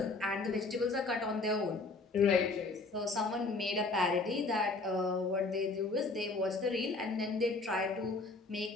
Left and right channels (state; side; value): quieter; right; 3.5 dB